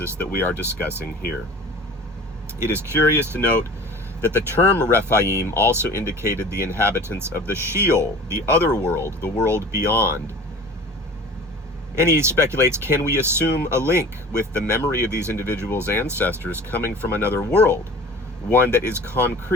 that we are discussing here. It is curious to note that the term Rephaim also indicated the inhabitants of the Sheol, the other world, the world beyond. And he speculates, can we assume a link with the memory of these individuals' ancestors coming from another world, one that is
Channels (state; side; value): normal; both; correlation 0.42